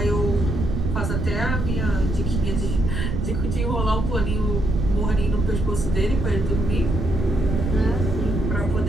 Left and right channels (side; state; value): right; noise; rumble, 1 dB below the sound